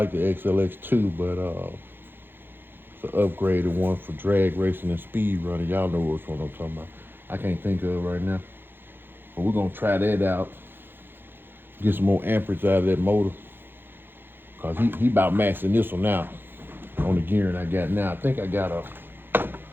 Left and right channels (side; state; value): left; late; 0.10 ms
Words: the XLX2, but it's an upgraded one for drag racing and speed running. Y'all know which one I'm talking about. I can't think of it right now. But we're gonna try that out. Get some more amperage out of that motor. Cause he about maxing this one out on the gearing I got now. I think I got